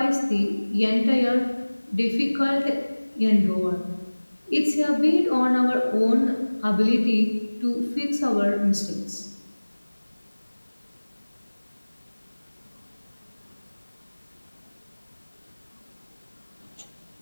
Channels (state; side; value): inverted; both; correlation -1.00